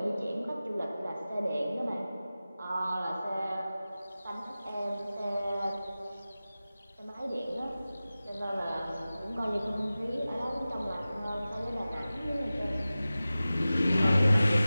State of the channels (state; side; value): inverted; both; correlation -0.96